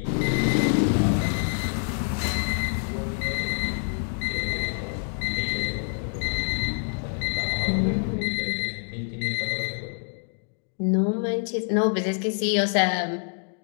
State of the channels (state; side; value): quieter; right; 38.2 dB